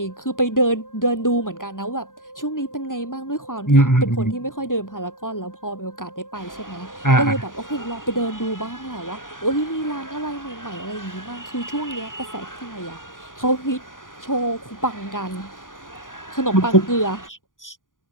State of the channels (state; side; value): late; right; 0.89 ms